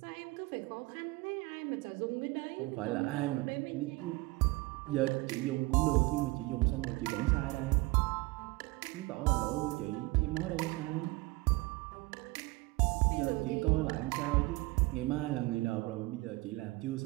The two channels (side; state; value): left; quieter; 22.1 dB